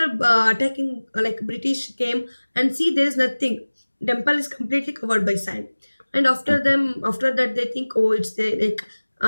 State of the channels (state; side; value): inverted; both; correlation -1.00